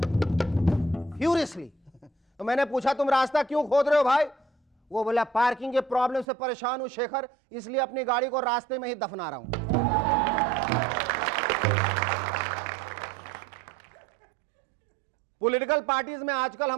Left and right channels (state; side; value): drops out; left; at 6.2 s